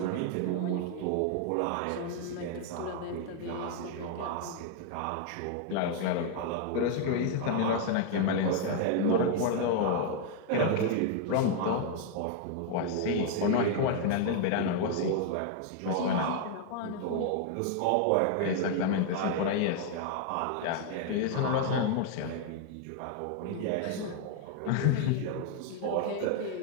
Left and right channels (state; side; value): different; both; correlation 0.00